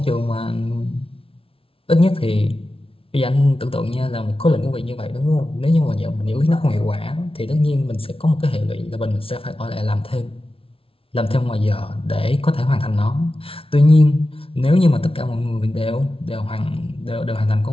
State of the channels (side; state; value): right; late; 0.26 ms